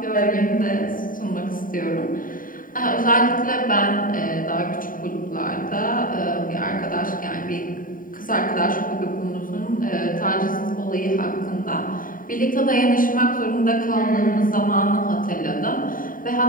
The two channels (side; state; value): right; late; 0.40 ms